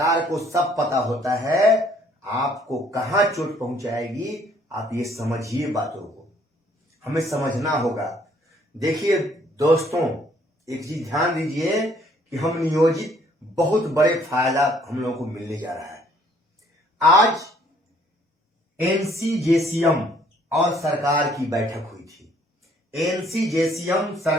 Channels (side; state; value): both; normal; correlation 0.63